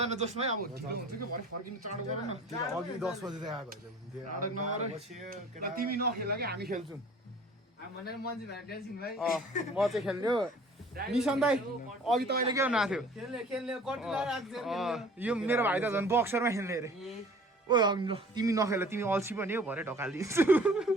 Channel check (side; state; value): both; normal; correlation 0.49